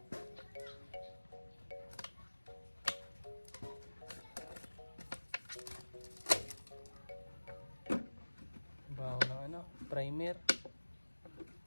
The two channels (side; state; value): both; inverted; correlation -1.00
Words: Baho lang ano, primer.